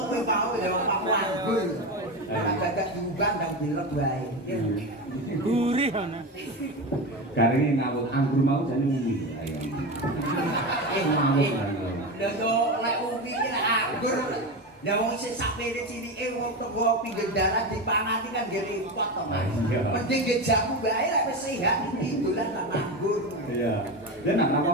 kowe mau ya Pak Wanggul. Agak diubah dan dilek wae. Gurih ana. Garinge ngawut anggur mau jane ngene. Ayo. Lha yo lek umi ki lek anggur. Ya wong sing sapene cilike wong teko pinggir dalan dipangati kan nggih repot to, Mas. Mending nggih jamu wae lek wis sehat iki dolan nang anggur. Iya. Dan nak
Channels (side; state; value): both; normal; correlation 0.20